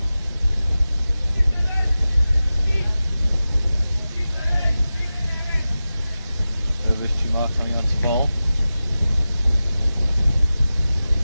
Coming on to bowl.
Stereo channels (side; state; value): both; inverted; correlation -0.94